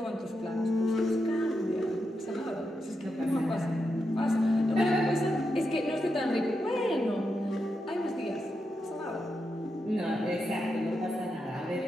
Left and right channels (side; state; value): both; normal; correlation 0.86